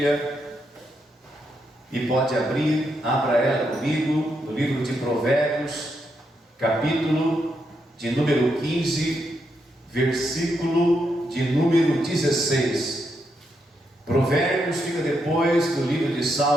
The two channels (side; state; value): both; normal; correlation 0.81